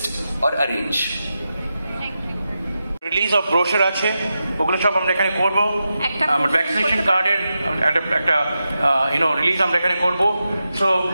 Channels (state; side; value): inverted; both; correlation -0.89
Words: or arrange. Release of brochure আছে, ওগুলো সব আমরা এখানে করবো। আমার ভ্যাকসিনেশন কার্ডের একটা রিলিজ আমরা এখানে করবো। সো